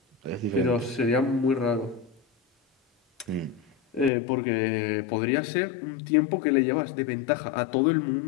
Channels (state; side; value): drops out; right; at 4.1 s